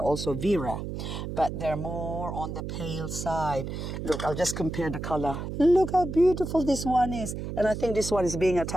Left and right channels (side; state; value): right; noise; hum, 6 dB below the sound